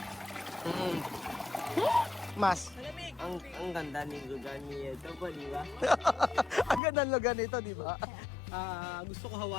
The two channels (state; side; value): drops out; right; at 6.8 s